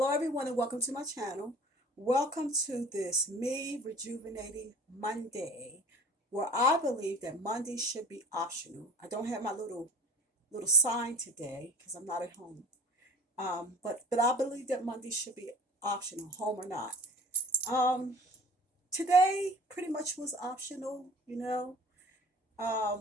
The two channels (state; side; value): normal; both; correlation 0.44